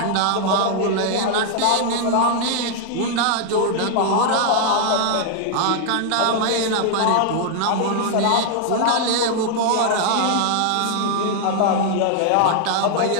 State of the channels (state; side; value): different; both; correlation 0.00